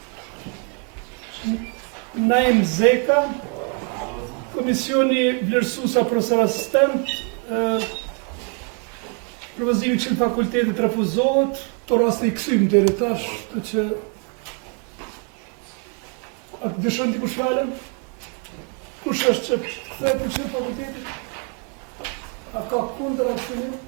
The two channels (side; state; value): left; quieter; 39.2 dB